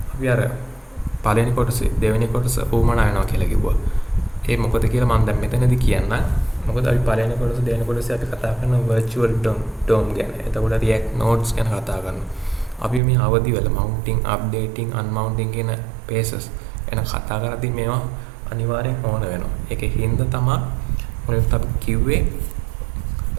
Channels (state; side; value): drops out; left; at 13.0 s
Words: අපි අර පළවෙනි කොටසේ දෙවෙනි කොටස උවමනා වෙනවා කියලා කිව්වා. ඒ මොකද කියලා මම දැන් මෙතනදී කියන්න. මොකද අපි පළවෙනි කොටස දෙවෙනි කොටසේ අපි කතා කරන virtual DOM ගැන. එතකොට React nodes ගැන කතා කරනවා. අපි මේ අවදි වල mounting, updating, unmounting කියන phases ගැන කතා කරද්දී මේවා අනිවාර්යෙන් ඕන වෙනවා. ඒකේ හින්දා තමයි මොකද අපි කිව්වේ